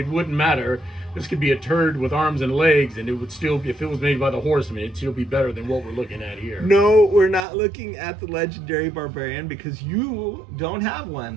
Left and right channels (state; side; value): drops out; left; at 7.4 s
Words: wouldn't matter. This could be a turd with arms and legs, and it would still, if it was made by the Horsemen, it'd still be better than what we're looking at here. No, we're not looking at the legendary barbarian because you don't have